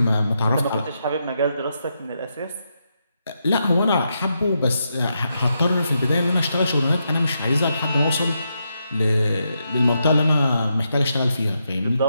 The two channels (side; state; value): both; inverted; correlation -0.83